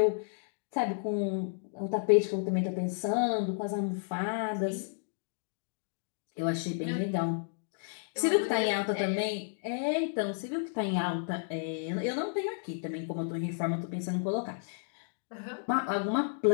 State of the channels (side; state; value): right; silent; digital silence